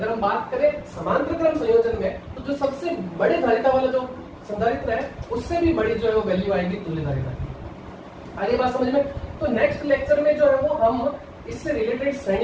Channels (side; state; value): both; identical; correlation 1.00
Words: हम बात करें समांतर क्रम संयोजन में, तो जो सबसे बड़े धारिता वाला जो संधारित्र है उससे भी बड़ी जो है वो वैल्यू आएगी तुल्य धारिता की। आगे बात समझ में। तो नेक्स्ट लेक्चर में जो है वो हम इससे रिलेटेड